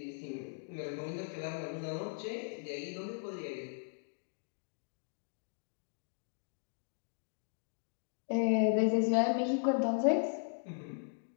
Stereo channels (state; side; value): silent; right; digital silence